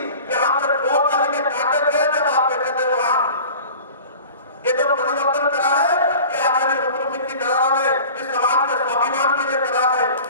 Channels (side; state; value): both; inverted; correlation -0.40